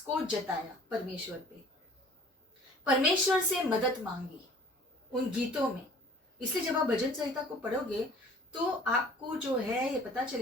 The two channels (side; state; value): both; normal; correlation 0.50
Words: को जताया परमेश्वर पे, परमेश्वर से मदद मांगी उन गीतों में। इसलिए जब आप भजन संहिता को पढ़ोगे तो आपको जो है ये पता